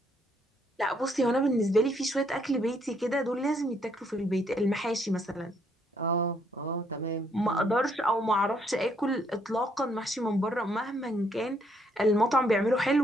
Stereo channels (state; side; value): normal; both; correlation 0.70